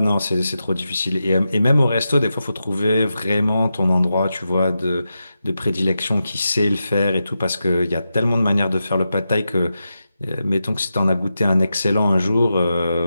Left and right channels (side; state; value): both; inverted; correlation -0.89